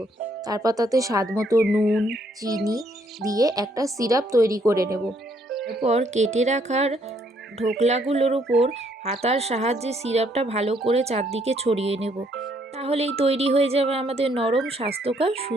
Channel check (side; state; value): both; normal; correlation 0.69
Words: তারপর তাতে স্বাদ মতো নুন, চিনি দিয়ে একটা সিরাপ তৈরি করে নেব। এরপর কেটে রাখার ঢোকলাগুলোর উপর হাতার সাহায্যে সিরাপটা ভালো করে চারদিকে ছড়িয়ে নেব। তাহলেই তৈরি হয়ে যাবে আমাদের নরম স্বাস্থ্যকর